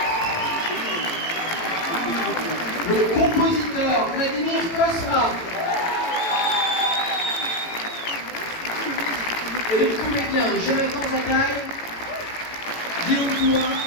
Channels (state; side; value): late; right; 18 ms